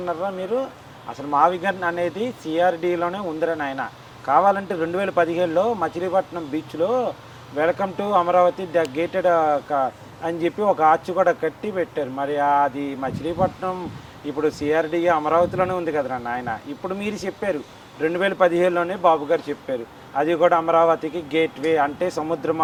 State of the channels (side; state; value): both; identical; correlation 1.00